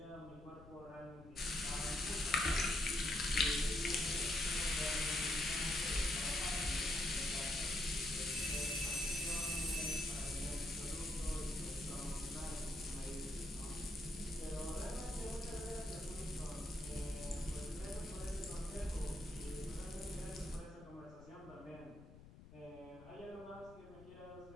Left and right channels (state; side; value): noise; left; rumble, 18 dB below the sound